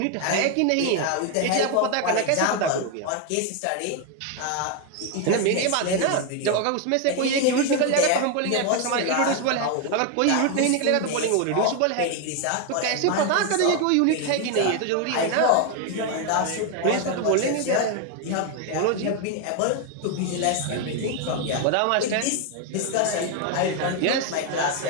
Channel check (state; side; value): different; both; correlation 0.01